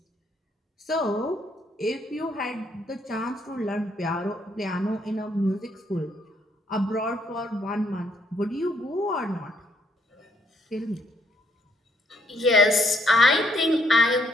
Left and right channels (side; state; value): both; normal; correlation 0.71